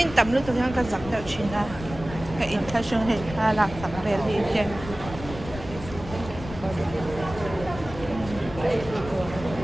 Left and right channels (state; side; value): noise; left; rumble, 12 dB below the sound